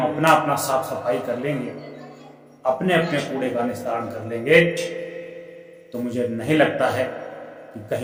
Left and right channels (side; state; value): both; identical; correlation 1.00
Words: अपना अपना साफ सफाई कर लेंगे, अपने अपने कूड़े का निस्तारण कर लेंगे, तो मुझे नहीं लगता है कि